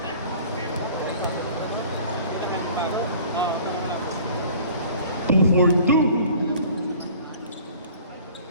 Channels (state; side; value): inverted; both; correlation -0.48